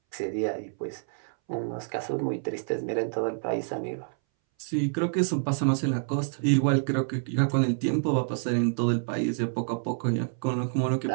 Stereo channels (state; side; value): silent; left; 59 dB below the other